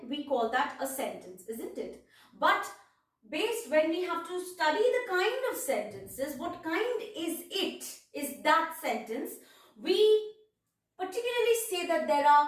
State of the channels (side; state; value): both; identical; correlation 1.00